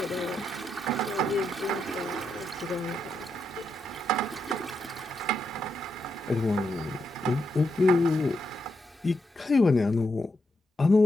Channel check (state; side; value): normal; both; correlation 0.83